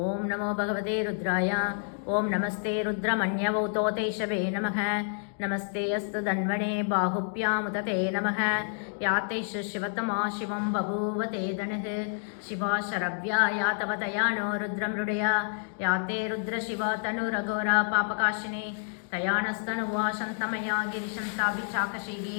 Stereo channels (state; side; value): silent; right; digital silence